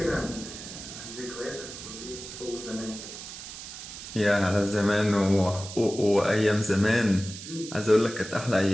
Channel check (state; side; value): noise; right; hiss, 11 dB below the sound